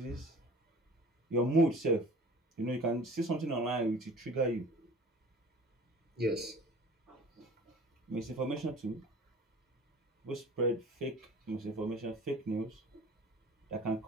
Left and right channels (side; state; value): both; normal; correlation 0.45